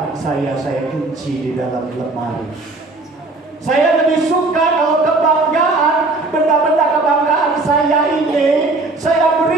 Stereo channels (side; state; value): left; quieter; 3.3 dB